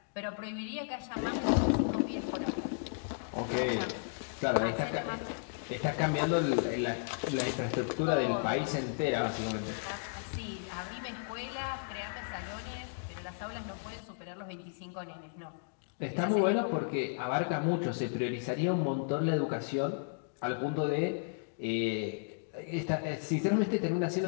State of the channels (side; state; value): right; silent; digital silence